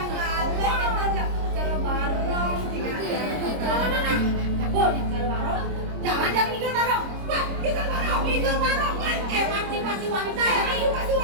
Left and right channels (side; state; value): left; late; 26 ms